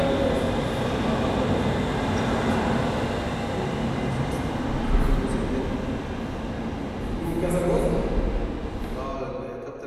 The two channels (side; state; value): both; identical; correlation 1.00